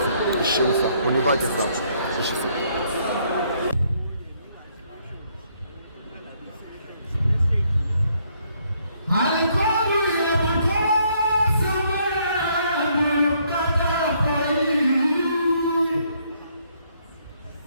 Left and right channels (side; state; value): both; inverted; correlation -0.69